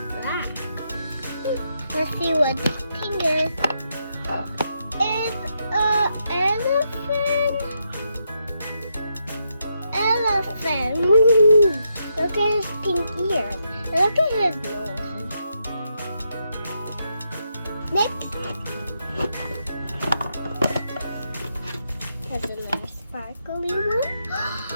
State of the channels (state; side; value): inverted; both; correlation -0.81